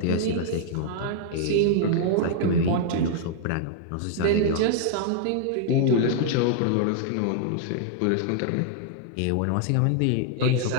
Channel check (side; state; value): both; different; correlation -0.01